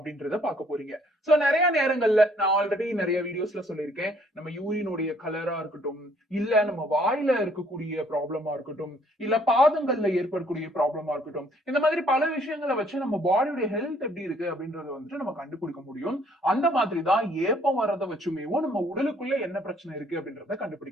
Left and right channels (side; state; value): both; normal; correlation 0.63